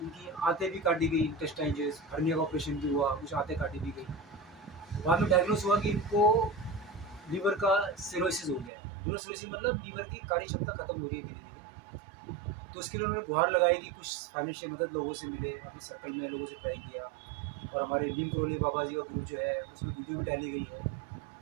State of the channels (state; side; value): drops out; left; at 8.7 s